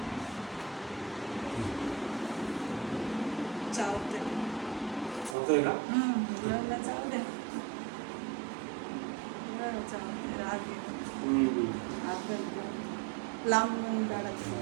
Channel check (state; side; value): drops out; left; at 5.4 s